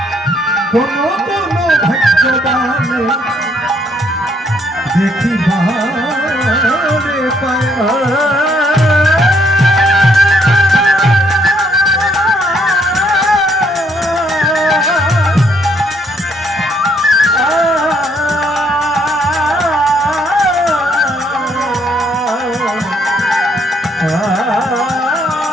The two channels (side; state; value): both; normal; correlation 0.69